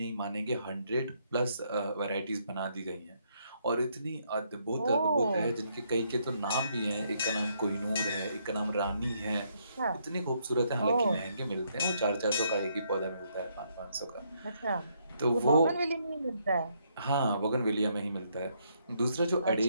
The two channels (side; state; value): both; inverted; correlation -0.73